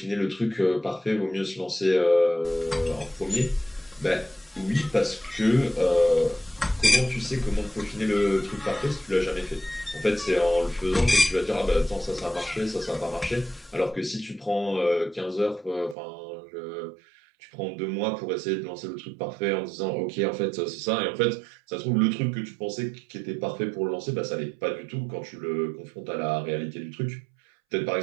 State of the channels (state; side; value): drops out; left; at 16.0 s